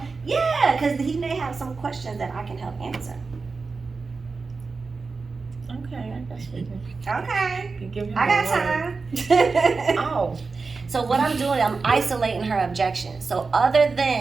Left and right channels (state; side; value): quieter; left; 4.4 dB